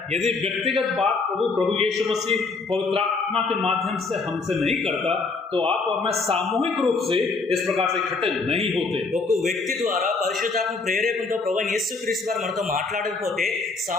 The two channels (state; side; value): quieter; right; 4.0 dB